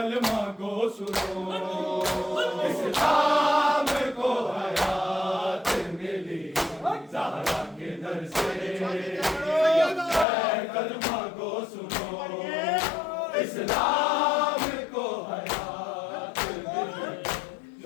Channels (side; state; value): right; drops out; at 10.2 s